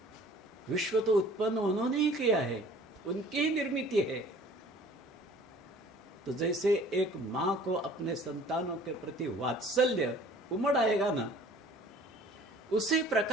विश्व तो उत्पन्न उन्होंने ही किया है, उनकी ही निर्मित है। तो जैसे एक मां को अपने संतानों के प्रति वात्सल्य उमड़ आएगा ना, उसी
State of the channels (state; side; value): normal; both; correlation 0.50